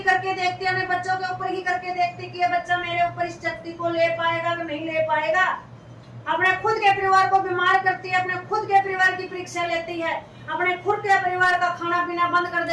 करके देखते, अपने बच्चों के ऊपर ही करके देखते कि ये बच्चा मेरे ऊपर इस शक्ति को ले पाएगा कि नहीं ले पाएगा। अपने खुद के परिवार को बीमार करती है, अपने खुद के परिवार की परीक्षा लेती है, अपने खुद के परिवार का खाना पीना बंद कर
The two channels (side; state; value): both; identical; correlation 1.00